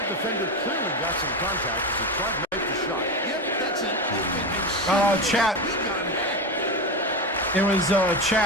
defender clearly got some contact as he tried to make the shot. Yep, that's an open and Chat. It was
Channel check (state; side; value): normal; both; correlation 0.18